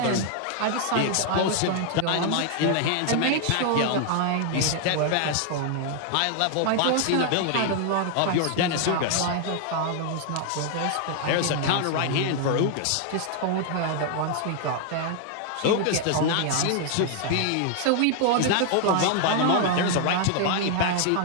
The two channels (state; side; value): different; both; correlation 0.00